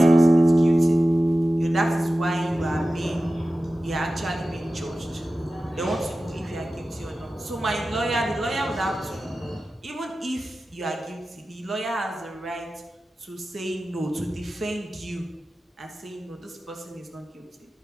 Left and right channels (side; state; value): both; normal; correlation 0.95